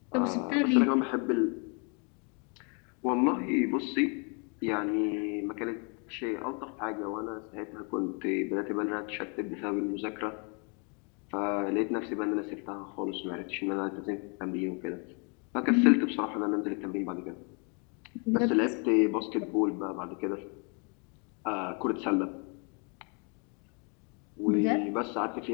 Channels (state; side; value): quieter; right; 35.3 dB